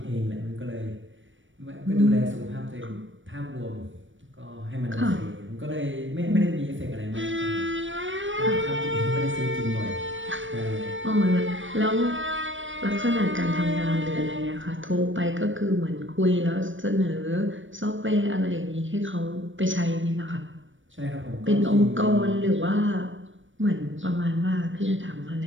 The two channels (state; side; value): late; left; 0.56 ms